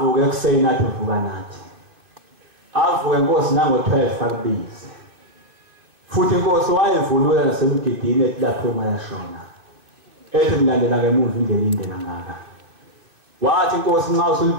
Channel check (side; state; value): left; late; 2.6 ms